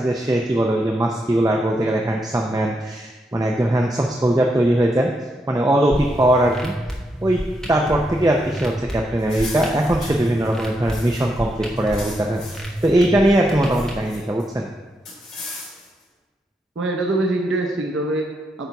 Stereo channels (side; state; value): both; normal; correlation 0.81